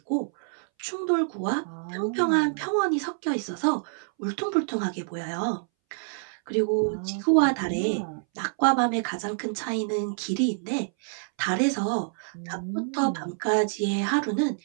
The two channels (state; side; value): silent; left; 60 dB below the other